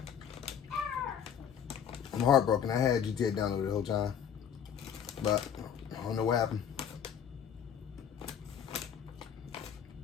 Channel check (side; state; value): right; quieter; 8.3 dB